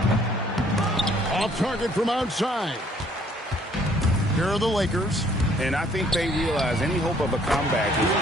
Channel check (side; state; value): both; normal; correlation 0.62